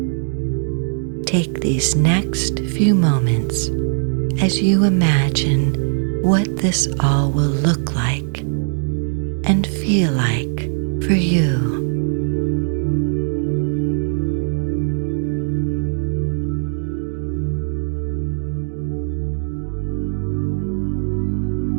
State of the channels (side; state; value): left; silent; 66 dB below the other